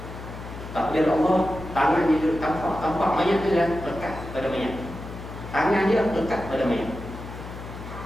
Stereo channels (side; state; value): left; noise; hum, 11 dB below the sound